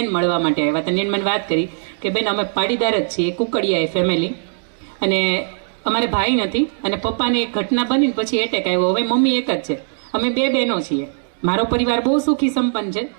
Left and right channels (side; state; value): left; silent; 66 dB below the other